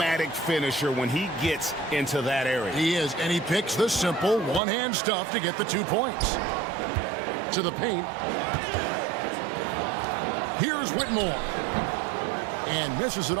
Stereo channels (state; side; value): drops out; left; at 4.6 s